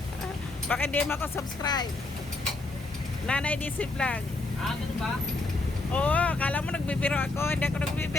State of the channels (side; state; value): right; quieter; 3.1 dB